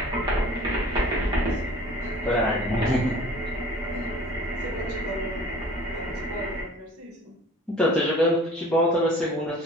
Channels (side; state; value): both; normal; correlation 0.47